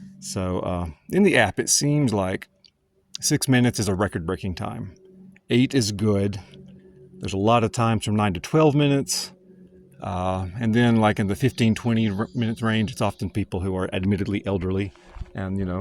So in the app, it seems like 6 minutes is a record-breaking time. 8 is good. There's a lot of times from 9 to 12 minutes. And then like in the 15-20 minutes range, it's often people who are admittedly elderly and, you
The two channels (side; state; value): both; identical; correlation 1.00